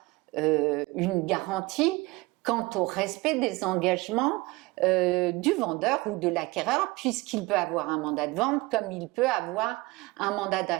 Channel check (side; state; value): left; quieter; 22.7 dB